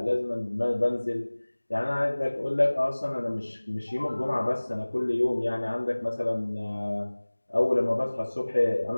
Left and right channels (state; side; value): inverted; both; correlation -1.00